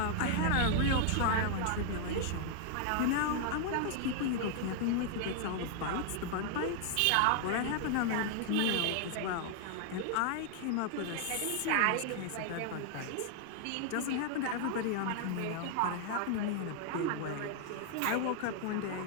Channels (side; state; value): both; different; correlation 0.00